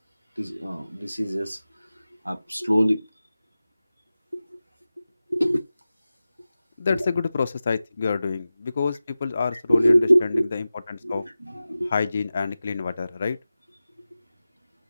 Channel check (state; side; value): inverted; both; correlation -0.95